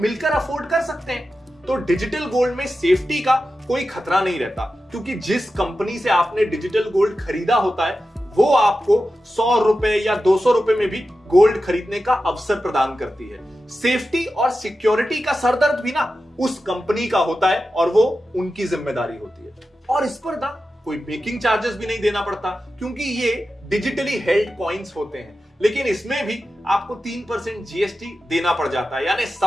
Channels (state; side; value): normal; both; correlation 0.92